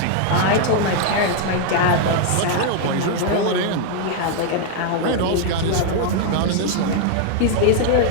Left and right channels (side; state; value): both; different; correlation 0.00